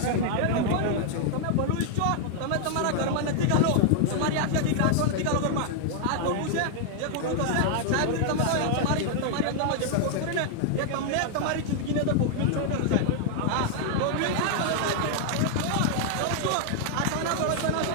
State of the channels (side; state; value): both; different; correlation 0.00